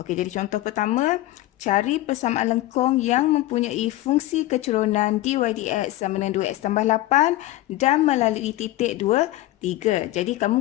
jadi contoh pertama, cari persamaan lengkung yang mempunyai fungsi kecerunan dy dx sama dengan 2x tambah 8 dan melalui titik 2, 3. Jadi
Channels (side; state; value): right; quieter; 16.1 dB